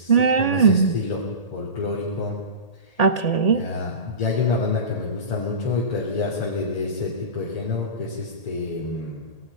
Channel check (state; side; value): late; right; 1.8 ms